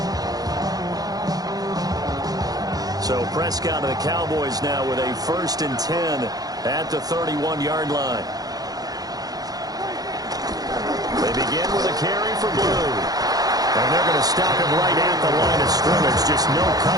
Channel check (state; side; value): late; left; 0.18 ms